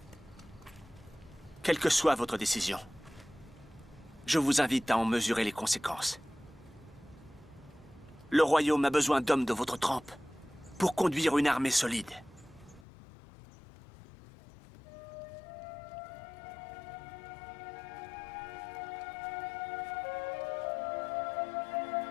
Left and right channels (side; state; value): right; drops out; at 12.9 s